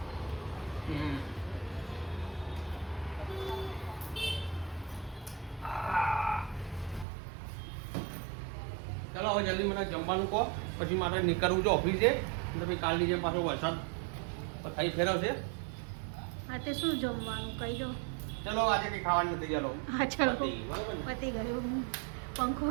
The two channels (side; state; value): left; drops out; at 7.1 s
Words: ચલો હવે જલ્દી મને જમવાનું કહો, પછી મારે નીકળવું છે ઓફિસે. તો પછી કાલની જેમ પાછો વરસાદ થઈ ફેરવશે. હા તે શું જમવાનું કહી દો. ચલો આજે કંઈ ખાવાનું નથી. ચાલો હા ચલો પતી, બરાબર ને? પતી ગયું. પંખો